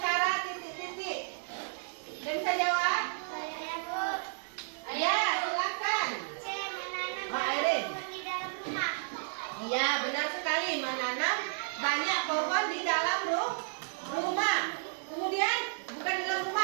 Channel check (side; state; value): left; silent; digital silence